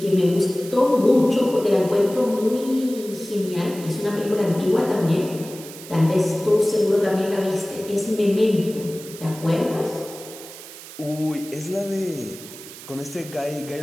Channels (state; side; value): noise; right; hiss, 15 dB below the sound